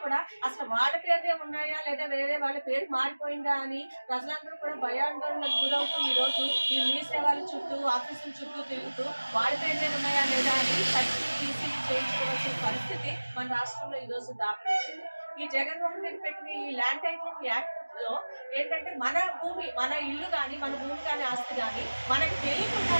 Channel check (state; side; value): inverted; both; correlation -1.00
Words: కూడా అసలు వాళ్ళ పేరునే ఉన్నాయా లేదా వేరే వాళ్ళ పేరు మారిపోయిందా అని ప్రజలందరూ కూడా భయాందోళనకు గురవుతూ ఈ రోజు ఈ మీ సేవల చుట్టూ ఆఫీసుల చుట్టూ తిరుగుతూ వాళ్ళ పేరునే ఉన్నాయా లేదా అని ఈసీలు చేయించుకోవాల్సిన పరిస్థితి మన రాష్ట్రంలో ఈ రోజు దాపరించింది. ఈ జగన్మోహన్ రెడ్డి పెట్టిన ఈ ల్యాండ్ టైటిలింగ్ యాక్ట్ లో ఏంటంటే మన భూమి, మన ఇల్లు కానీ, మన భూమి కానీ, ఆస్తి కానీ మనకి